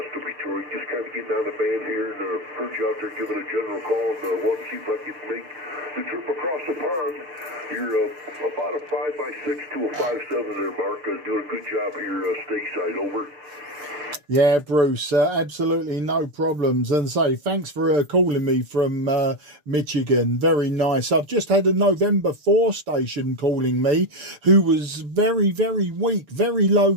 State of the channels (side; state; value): left; late; 6.8 ms